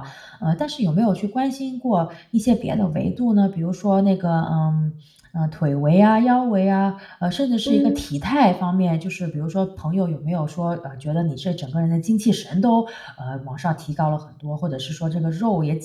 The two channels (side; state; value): both; identical; correlation 1.00